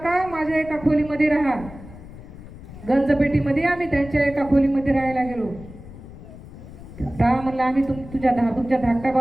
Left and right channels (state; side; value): noise; left; rumble, 16 dB below the sound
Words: माझ्या एका खोलीमध्ये राहा. गंजपेटीमध्ये आम्ही त्यांच्या एका खोलीमध्ये राहायला गेलो. का म्हणलं आम्ही तुमच्या धाकट्या